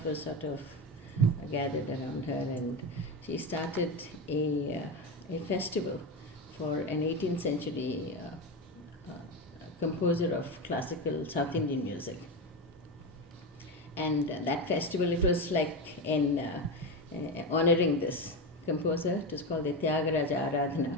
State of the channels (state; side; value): normal; both; correlation 0.17